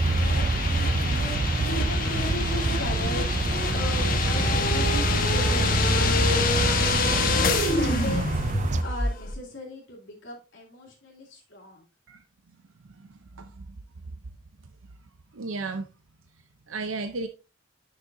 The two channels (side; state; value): both; normal; correlation 0.52